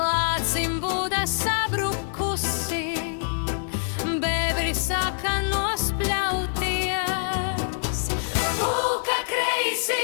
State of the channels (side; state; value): right; silent; digital silence